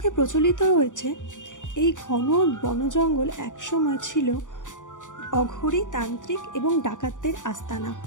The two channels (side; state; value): right; late; 0.86 ms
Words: প্রচলিত রয়েছে এই ঘন বনজঙ্গল একসময় ছিল অঘরী, তান্ত্রিক এবং ডাকাতদের আস্তানা।